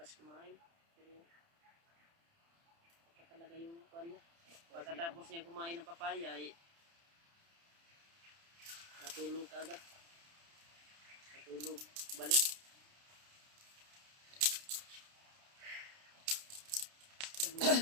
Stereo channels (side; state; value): left; late; 30 ms